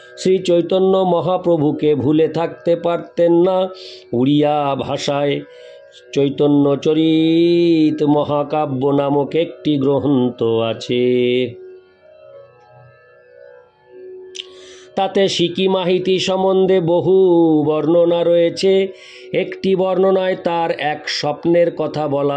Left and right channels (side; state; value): both; identical; correlation 1.00